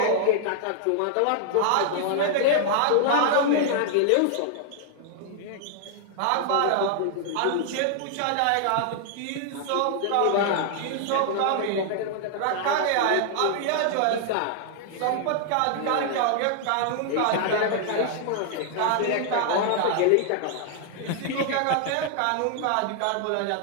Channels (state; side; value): different; both; correlation -0.01